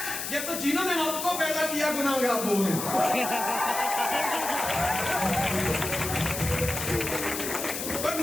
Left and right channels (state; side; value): noise; left; hiss, 5 dB below the sound